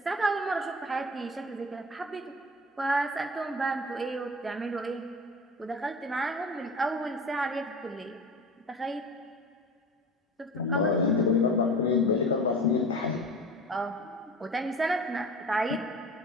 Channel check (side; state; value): both; normal; correlation 0.36